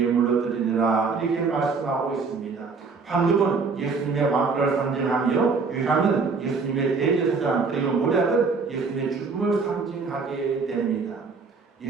드리느라 이렇게 말씀하고 있습니다. 황금은 예수님의 왕권을 상징하며 유황은 예수님의 대제사장 그리고 모략은 예수님의 죽음을 상징하게 됩니다.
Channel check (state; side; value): quieter; left; 4.7 dB